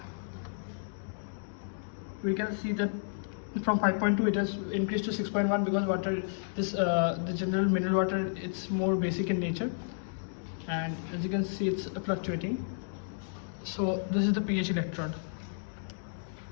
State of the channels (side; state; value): right; silent; digital silence